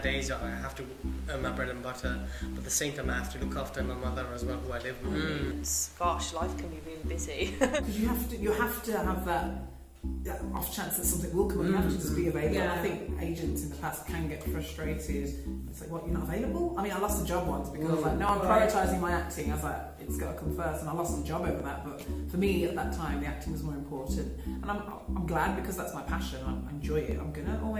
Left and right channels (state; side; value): identical; both; correlation 1.00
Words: I have to earn my bread and butter, but at the same time I have to look after my mother as well, who I live with. Gosh, life can be really busy. you have to have that off chance that something will come up. You have to just be available. I think agents in the past can get frustrated. It's like, what, you're not available? I mean, I lost a job once because I was like, no, I'm prioritising my acting. I was like, it's got to come first, and I lost the job over that. But for me at that time, the acting was more important, and I'm glad, because that's my passion. I enjoy it. I'm gonna